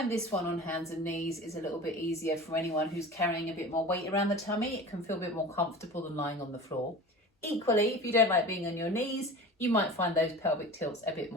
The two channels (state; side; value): normal; both; correlation 0.37